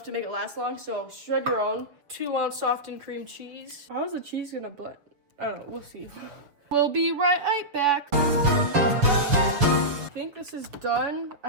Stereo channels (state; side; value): late; left; 6.8 ms